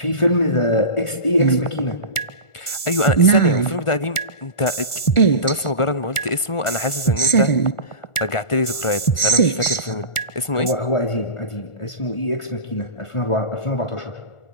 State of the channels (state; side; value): late; right; 1.4 ms